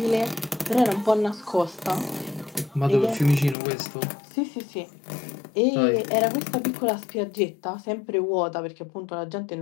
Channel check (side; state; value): right; drops out; at 3.6 s